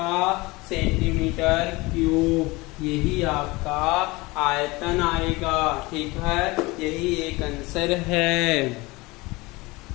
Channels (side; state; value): right; quieter; 22.8 dB